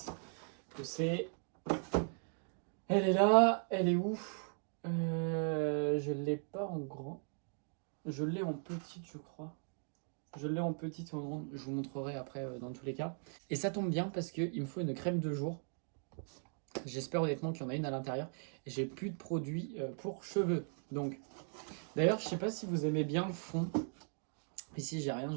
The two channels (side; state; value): left; silent; 52 dB below the other